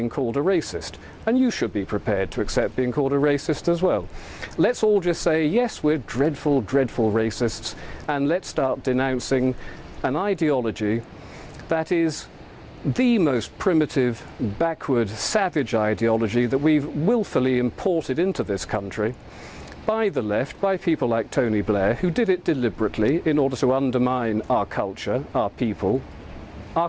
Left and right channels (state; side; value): identical; both; correlation 1.00